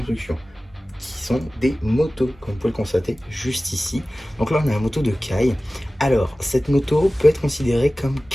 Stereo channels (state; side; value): normal; both; correlation 0.97